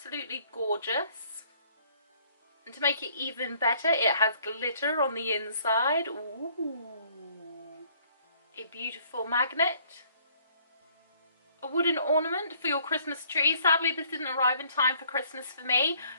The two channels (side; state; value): both; inverted; correlation -0.62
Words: gorgeous. And to make it even better, it has glitter on the inside. Ooh. A beautiful magnet. A wooden ornament for your Christmas tree. Sadly, this didn't arrive in time for Christmas for me,